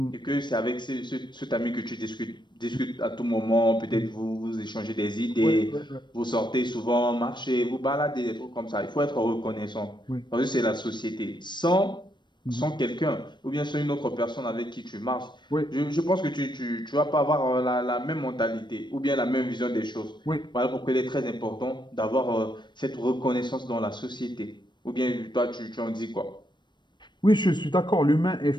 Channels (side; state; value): right; late; 0.22 ms